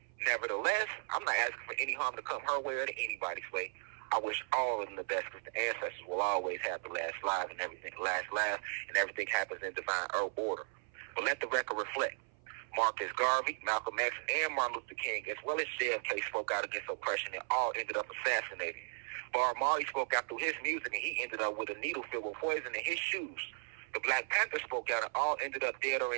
Nevertheless, I'm not asking for any harm to come her way or to anybody's way. I wish all of them the best because the ancestors will always have the last laugh and everything happens in divine order. But let the record reflect. Marcus Garvey, Malcolm X, and Martin Luther King, as well as JFK, spoke out against oppression and all ended up assassinated. Bob Marley spoke out through his music and he ended up with a needle filled with poison in his shoes. The Black Panther spoke out and all ended up dead or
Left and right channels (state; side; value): silent; left; 54 dB below the other